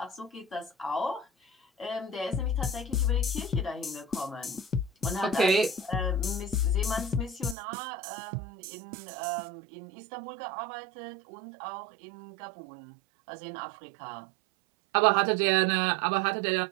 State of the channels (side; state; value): left; drops out; at 7.6 s